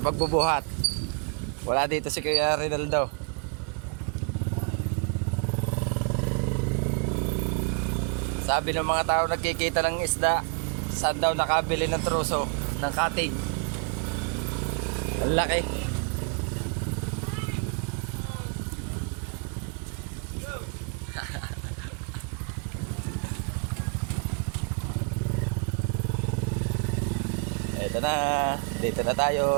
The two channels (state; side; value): quieter; left; 37.1 dB